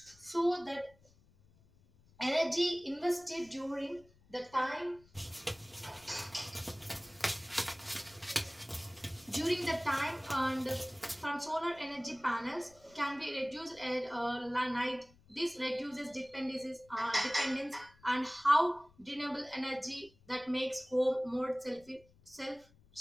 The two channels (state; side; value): noise; left; rumble, 28 dB below the sound